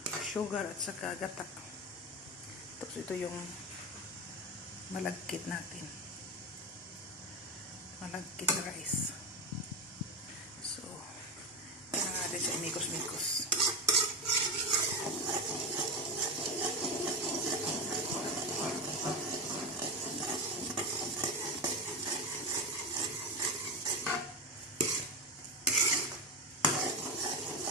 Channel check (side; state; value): both; normal; correlation 0.17